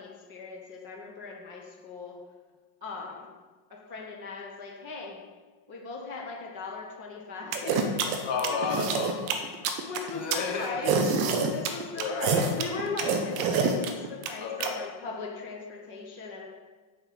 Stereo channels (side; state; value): left; late; 5.5 ms